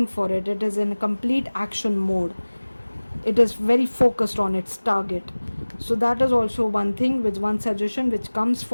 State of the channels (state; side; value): inverted; both; correlation -1.00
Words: for it. It is in a complete action mode. It is very focused on its target. So that is also one thing, with one suggestion which comes